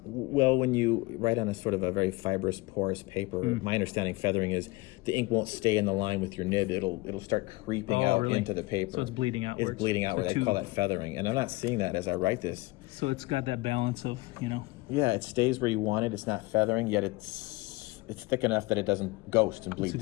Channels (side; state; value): right; quieter; 22.3 dB